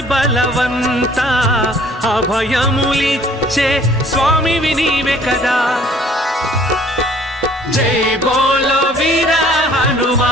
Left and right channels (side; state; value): both; normal; correlation 0.56